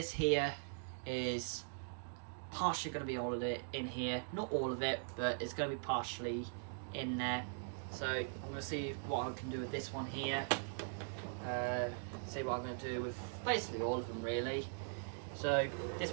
here is partially going to be all of it in here. Not all of it, but it's going to be partially in there. So I'm going to see what I can do with this one here. See what I'm going to do with basically all of them really. So this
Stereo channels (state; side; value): silent; left; digital silence